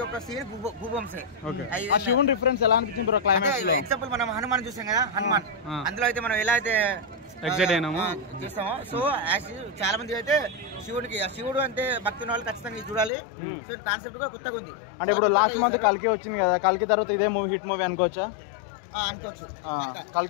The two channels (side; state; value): right; drops out; at 13.1 s